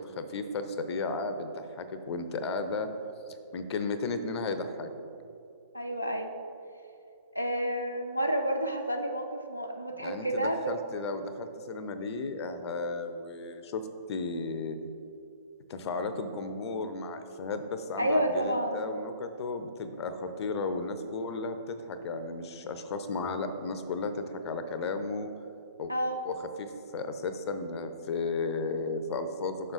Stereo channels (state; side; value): inverted; both; correlation -0.51